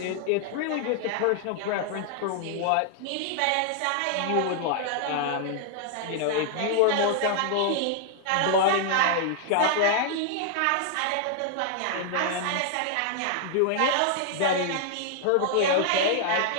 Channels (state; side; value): different; both; correlation 0.00